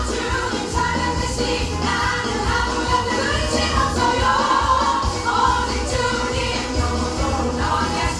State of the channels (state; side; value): identical; both; correlation 1.00